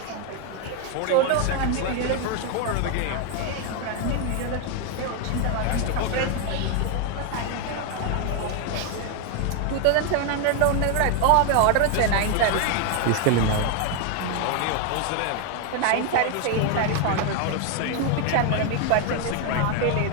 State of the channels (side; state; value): both; different; correlation 0.01